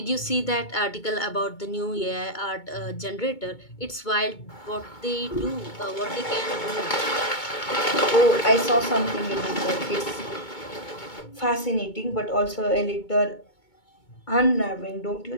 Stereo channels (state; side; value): late; right; 2.2 ms